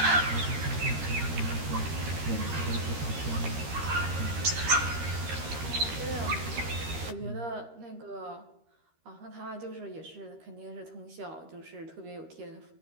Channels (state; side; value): late; left; 13 ms